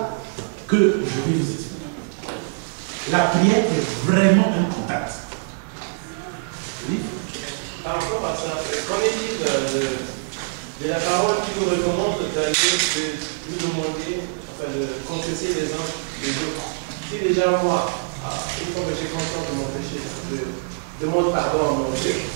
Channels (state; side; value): silent; left; 55 dB below the other